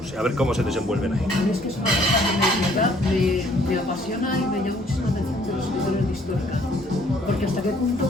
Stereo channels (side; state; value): both; normal; correlation 0.61